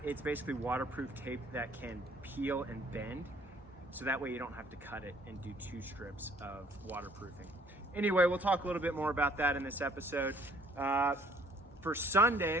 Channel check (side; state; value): both; normal; correlation 0.59